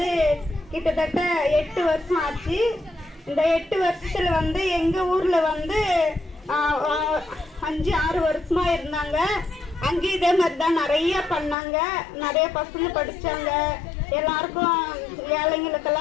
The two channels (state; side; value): drops out; right; at 11.6 s